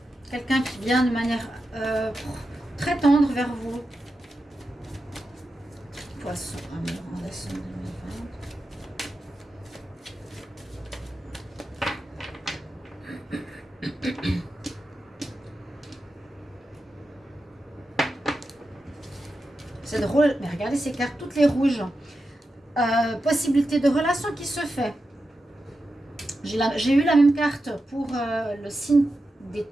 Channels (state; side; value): normal; both; correlation 0.90